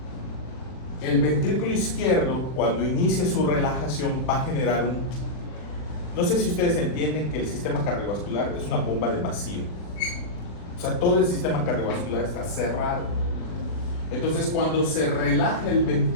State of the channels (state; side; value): late; right; 39 ms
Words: el ventrículo izquierdo, cuando inicie su relajación, va a generar un... No sé si ustedes entienden que el sistema cardiovascular es una bomba de vacío. O sea, todo el sistema cardiovascular está cerrado. Entonces, cuando se relaja el